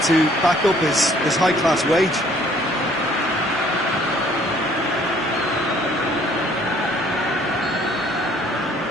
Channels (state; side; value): normal; both; correlation 0.59